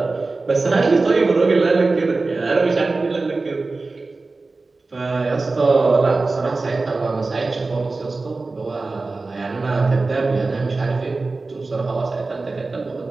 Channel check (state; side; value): quieter; left; 3.6 dB